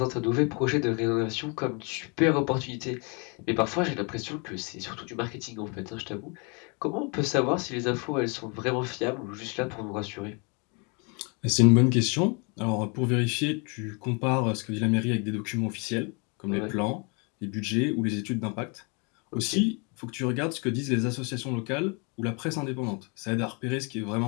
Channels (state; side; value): quieter; right; 33.2 dB